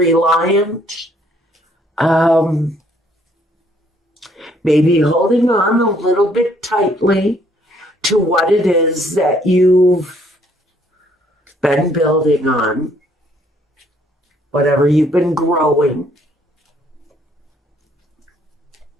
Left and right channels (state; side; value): normal; both; correlation 0.65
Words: maybe holding on a little bit tightly to what it is that you've been building on, whatever you've been growing.